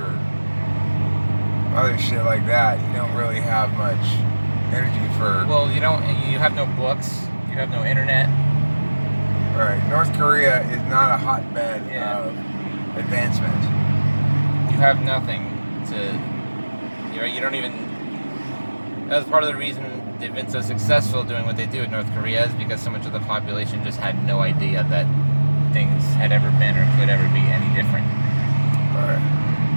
other shit like that, you don't really have much energy for. Well, you have no books, you have no internet. Right. North Korea is not a hotbed of advancement. You have nothing to. You don't even. That was part of the reason they've been so successful doing what they do in North Korea, is because so much of the population just had no idea that things had ever been or could ever be any different. Right.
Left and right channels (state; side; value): inverted; both; correlation -1.00